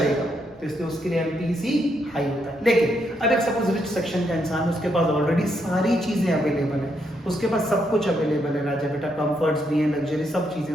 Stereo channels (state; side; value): normal; both; correlation 0.77